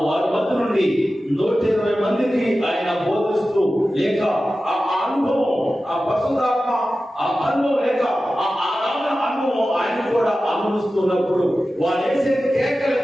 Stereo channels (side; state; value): both; normal; correlation 0.94